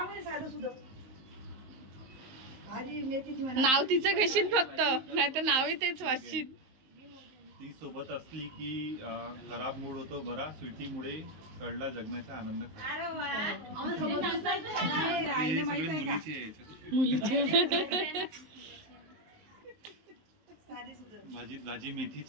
नाव तिचं घेशील फक्त नाही तर नावही तेच वाचशील ती सोबत असली की खराब मूड होतो बरा. स्वीटीमुळे कळला जगण्याचा आनंद खरा. हे सगळे मुलीचे आहे याच्यात. मुलीचे भाजी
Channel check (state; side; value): late; left; 19 ms